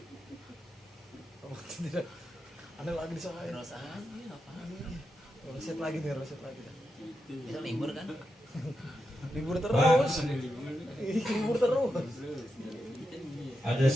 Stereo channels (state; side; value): normal; both; correlation 0.87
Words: Ada lagi di sana. Terus aja apaan? Roset lagi. Bisa libur kan? Libur terus. Libur terus. Ada